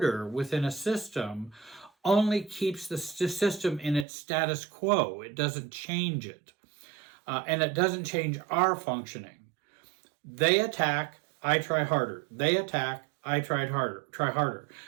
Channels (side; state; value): left; drops out; at 4.0 s